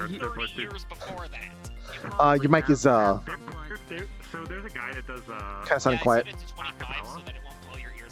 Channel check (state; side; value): identical; both; correlation 1.00